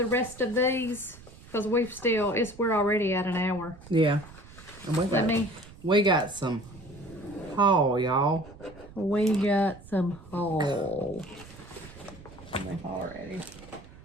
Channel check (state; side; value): noise; right; rumble, 19 dB below the sound